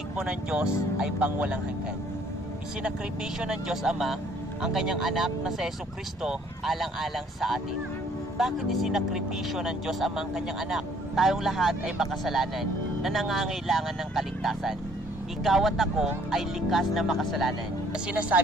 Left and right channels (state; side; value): normal; both; correlation 0.61